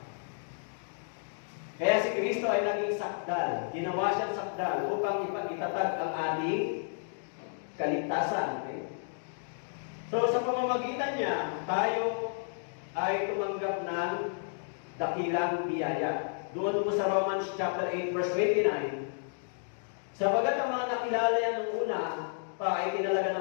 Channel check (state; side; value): silent; right; digital silence